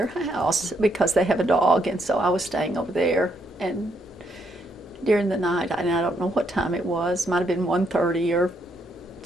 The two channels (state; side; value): normal; both; correlation 0.75